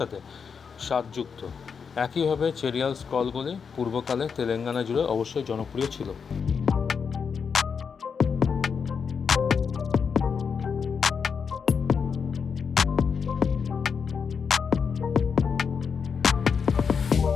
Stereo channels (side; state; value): right; quieter; 6.1 dB